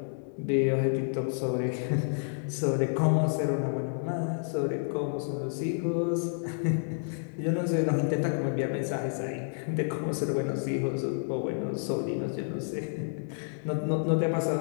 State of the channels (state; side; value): silent; right; digital silence